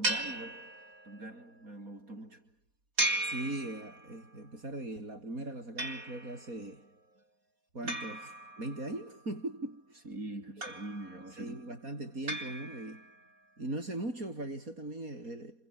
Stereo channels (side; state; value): left; late; 4.2 ms